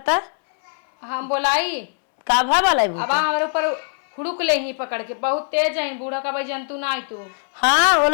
हम बोलाई का भा बलाई अब हमारे ऊपर हुड़ुक ले ही पकड़ के बहुत तेज है बूढ़ा का भाई जंतु ना आई तू। हाँ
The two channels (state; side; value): silent; right; digital silence